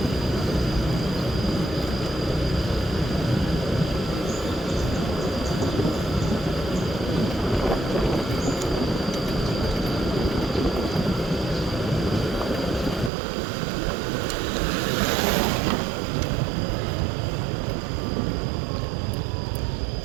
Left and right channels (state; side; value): drops out; left; at 13.1 s